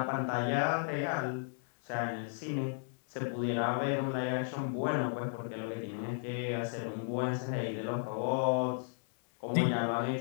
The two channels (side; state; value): right; silent; 55 dB below the other